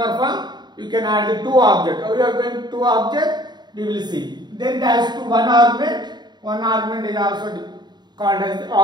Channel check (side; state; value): left; late; 0.21 ms